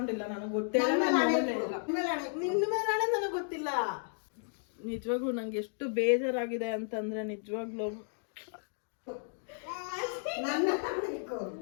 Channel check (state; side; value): silent; right; digital silence